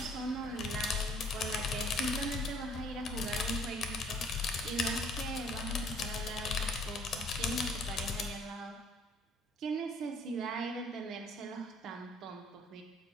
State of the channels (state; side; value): normal; both; correlation 0.59